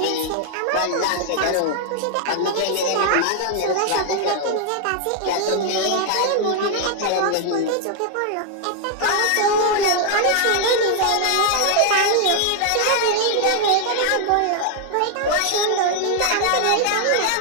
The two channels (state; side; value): different; both; correlation 0.00